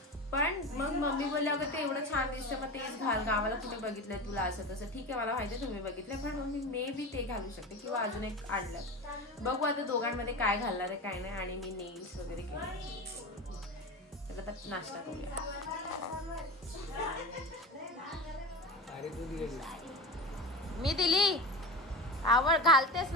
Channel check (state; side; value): normal; both; correlation 0.27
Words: पण मग मम्मी बोलले, अगं ते एवढं छान दिसतं, मग तेच घाल, गावाला कुठे बघितलंय तुला असं तसं. ठीक आहे, मला माहिती आहे तुम्ही बघितलंय, पण मग मी मे बी ते घालू शकते किंवा अजून एक आणलं. बघू आता दोघांमध्ये काय घालणार आहे काय नाही. आणि मी नेल्स वगैरे केले. तर आता नाश्ता करूया. मी दिली घालतेस